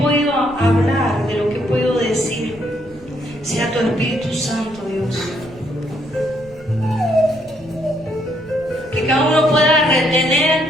hablar, de lo que puedo decir, sea tu Espíritu Santo, Dios. Que cada uno pueda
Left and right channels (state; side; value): noise; left; rumble, 23 dB below the sound